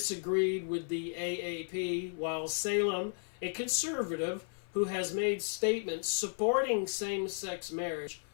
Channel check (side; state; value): right; silent; 55 dB below the other